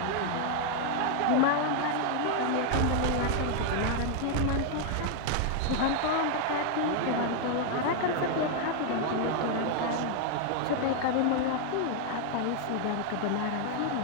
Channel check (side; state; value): both; different; correlation 0.00